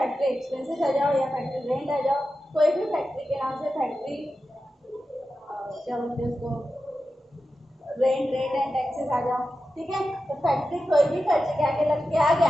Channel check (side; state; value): both; normal; correlation 0.92